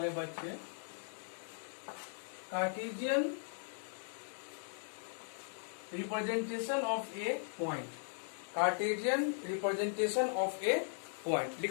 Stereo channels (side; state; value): right; silent; 52 dB below the other